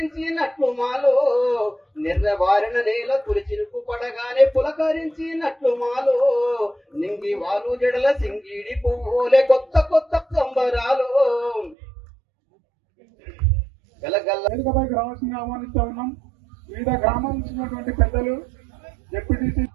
మాలో నిర్వారణ నేల తులచిరుకు పడగానే పులకరించినట్లు మాలో నింగి వాలు జడల సింగిడి పువ్వులే కొత్త కొత్త సంబరాలు వేదికపైకి రావాల్సిందిగా ఆహ్వానిస్తూ ఉన్నాం. వివిధ గ్రామాల నుంచి పెద్దలు డిప్యూటీసీ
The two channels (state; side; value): drops out; left; at 11.8 s